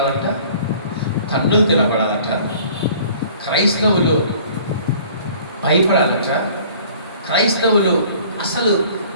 తన్నులు తినబడాలట. క్రైస్తవులు భయపడాలట. క్రైస్తవులు అసలు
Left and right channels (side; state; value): both; inverted; correlation -0.51